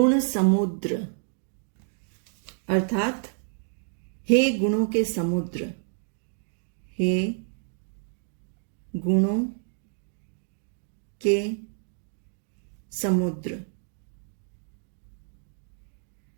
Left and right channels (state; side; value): silent; left; 57 dB below the other